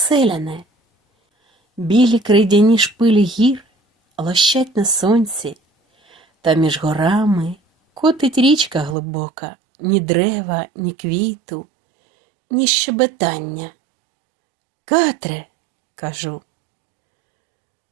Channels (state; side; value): drops out; left; at 9.0 s